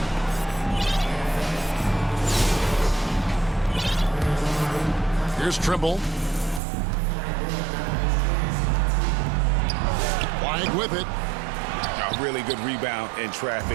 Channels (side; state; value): left; drops out; at 6.6 s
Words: Here's Trimble. Flag with it. A really good rebound in